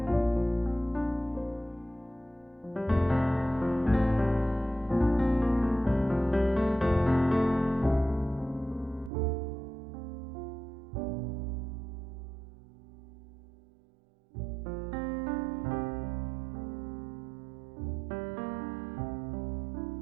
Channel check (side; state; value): left; drops out; at 9.1 s